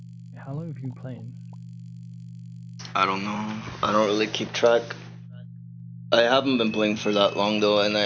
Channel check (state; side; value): identical; both; correlation 1.00